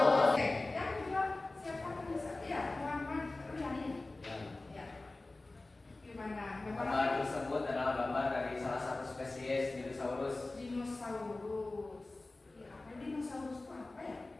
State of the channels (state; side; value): quieter; right; 3.1 dB